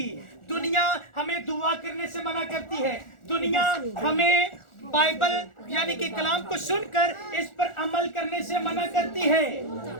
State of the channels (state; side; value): late; right; 1.4 ms